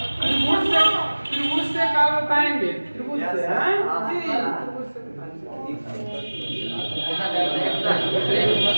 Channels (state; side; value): inverted; both; correlation -1.00